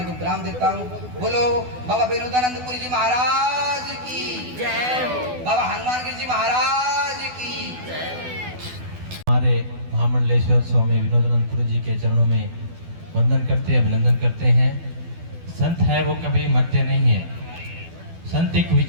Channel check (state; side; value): late; left; 12 ms